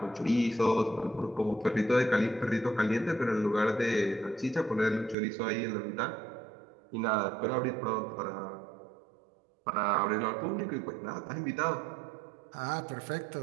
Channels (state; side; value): drops out; left; at 5.2 s